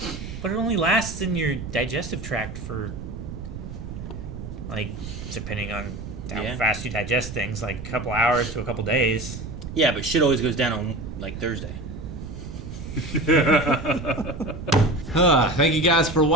But it only lasts in your digestive tract for, depending on how Yeah. fast you digest things, a couple hours to a couple days. Yeah, but shit always goes down on Thursday. Thank you guys for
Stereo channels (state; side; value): noise; right; rumble, 9 dB below the sound